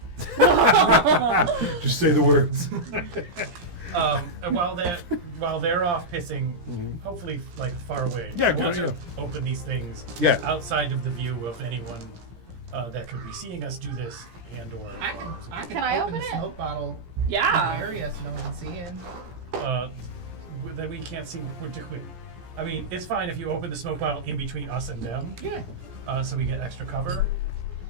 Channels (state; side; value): late; left; 17 ms